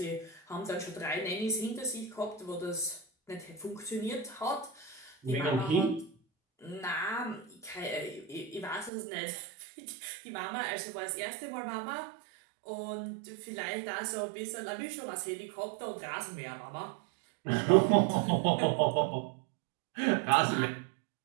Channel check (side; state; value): left; drops out; at 8.9 s